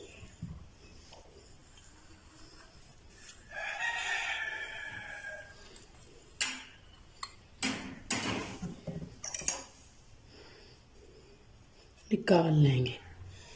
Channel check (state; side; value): identical; both; correlation 1.00